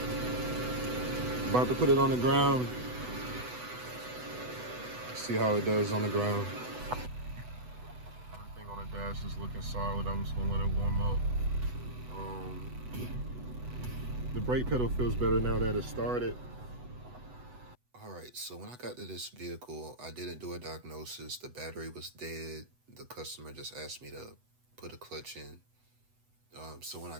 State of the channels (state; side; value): late; left; 8.0 ms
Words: About to put it on the ground. See how it does on the ground. Everything on the dash is looking solid. I'm just gonna let it warm up. The brake pedal feels better now that it started. All right, so when I got to this vehicle, I didn't do a diagnosis. The battery was dead. The customer just asked me to put a clutch in. So when I